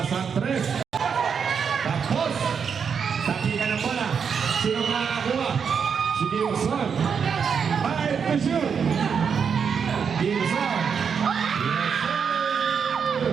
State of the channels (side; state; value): left; quieter; 6.6 dB